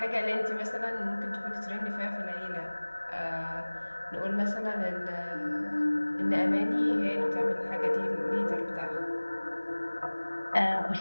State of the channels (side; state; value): both; inverted; correlation -1.00